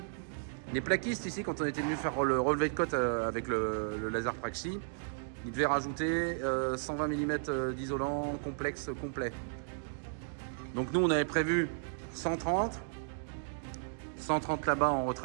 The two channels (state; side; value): silent; left; digital silence